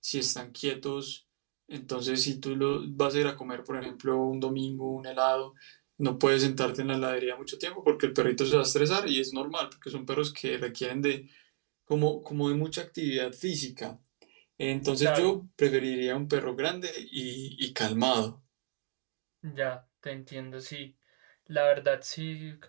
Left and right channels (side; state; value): left; silent; 56 dB below the other